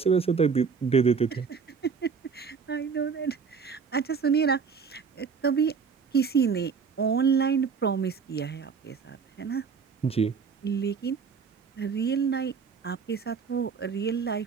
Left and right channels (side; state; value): left; quieter; 5.8 dB